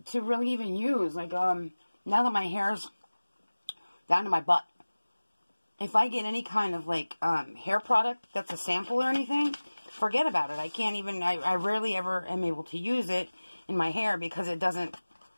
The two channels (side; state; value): both; inverted; correlation -1.00